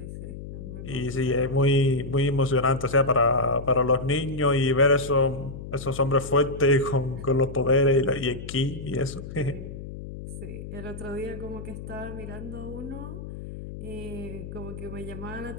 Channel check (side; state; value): left; noise; hum, 10 dB below the sound